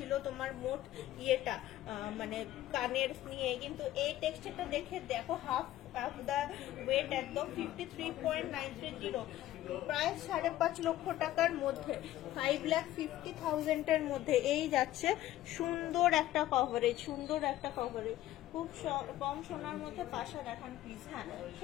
তোমার মোট ইয়েটা, মানে কানের নিয়ে। কিন্তু এই টেক্সচারটা দেখে দেখো, হাফ দা ওয়েট একদম 53.930, প্রায় 5.5 লক্ষ টাকার মধ্যে, 5,50,000 এর মধ্যে এই যাচ্ছে। সুন্দর একটা কভারেজ, সুন্দর একটা কভারেজ, খুব কম সোনার মধ্যে পাশা দেখান প্লিজ। হ্যাঁ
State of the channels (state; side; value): quieter; right; 14.3 dB